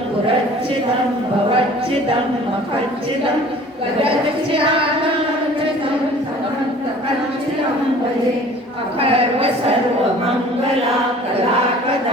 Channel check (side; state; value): both; normal; correlation 0.48